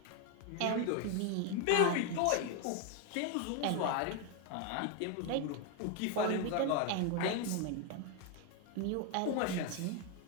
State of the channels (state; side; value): different; both; correlation 0.01